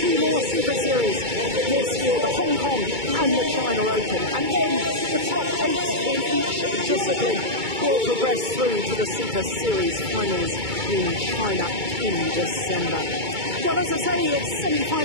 more Super Series this year, the Hong Kong and the China Open. And then the top 8 in each discipline will progress through to the Super Series Finals in China in December. Well, as I say, it's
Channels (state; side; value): late; left; 2.2 ms